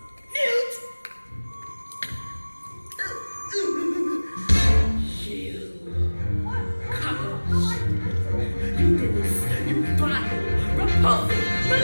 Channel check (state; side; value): inverted; both; correlation -1.00